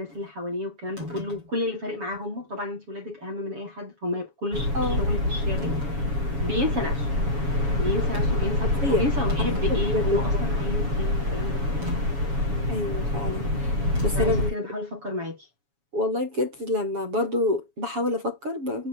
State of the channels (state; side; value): late; left; 7.1 ms